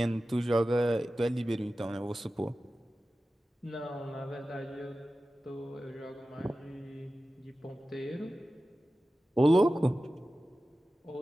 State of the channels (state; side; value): normal; both; correlation 0.95